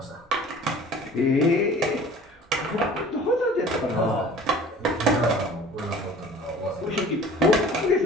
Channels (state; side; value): normal; both; correlation 0.46